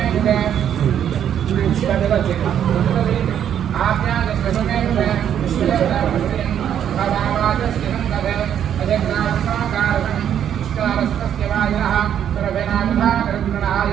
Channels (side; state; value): left; quieter; 9.5 dB